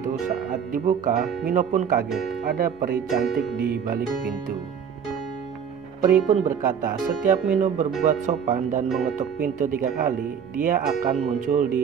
Saat dibuka, Mino pun kaget, ada peri cantik di balik pintu. Peri pun berkata, setiap Mino berbuat sopan dan mengetuk pintu 3 kali, dia akan muncul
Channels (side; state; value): left; quieter; 7.5 dB